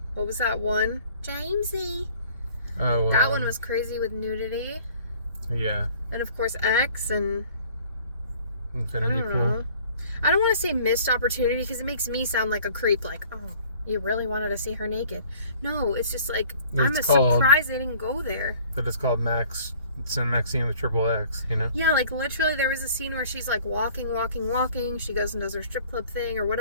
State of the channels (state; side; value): inverted; both; correlation -0.53